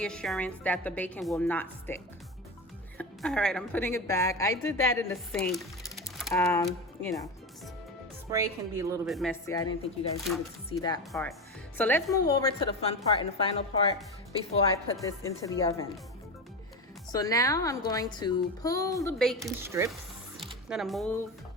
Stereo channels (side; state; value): both; normal; correlation 0.21